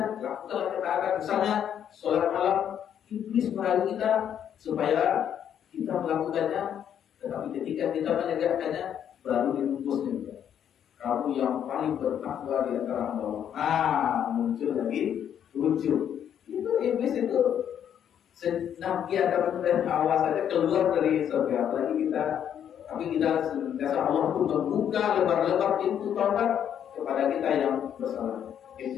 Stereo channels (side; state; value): right; quieter; 9.3 dB